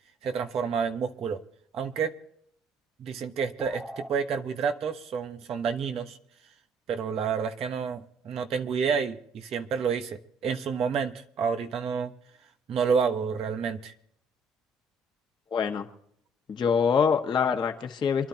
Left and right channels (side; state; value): both; normal; correlation 0.61